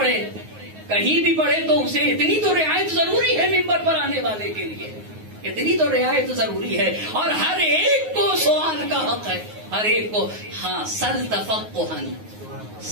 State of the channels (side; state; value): left; late; 9.5 ms